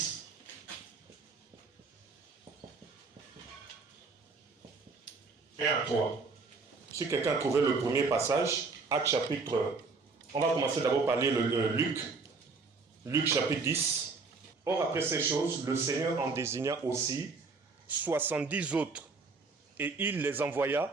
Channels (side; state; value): left; quieter; 4.3 dB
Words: Et à 3. Si quelqu'un a trouvé le premier passage, Actes chapitre... On va commencer d'abord par lire le Luc. Luc chapitre 10. Or après ces choses, le Seigneur en désigna aussi 70 autres. Et il les